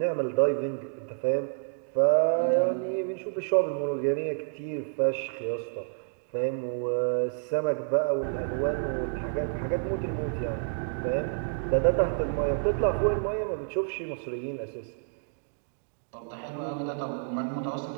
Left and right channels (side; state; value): left; silent; digital silence